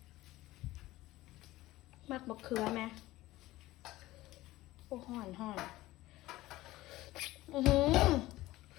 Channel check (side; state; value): right; quieter; 17.4 dB